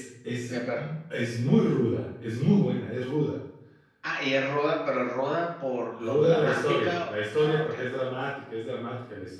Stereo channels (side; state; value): both; identical; correlation 1.00